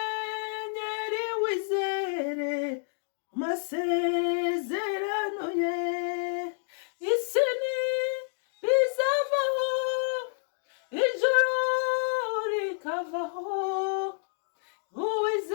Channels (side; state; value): right; silent; digital silence